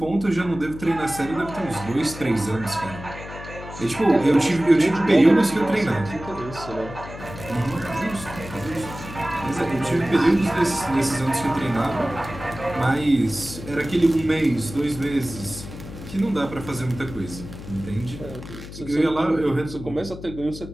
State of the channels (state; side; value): noise; left; hum, 13 dB below the sound